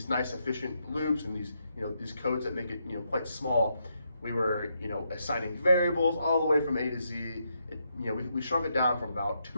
nice efficient loops and these codes that make it quite small, we were assigning variables all the way from A to Z. We shrunk it down from about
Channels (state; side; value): inverted; both; correlation -0.80